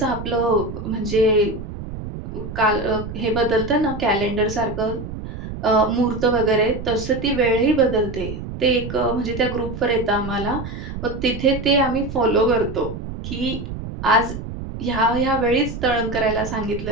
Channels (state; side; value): noise; right; rumble, 8 dB below the sound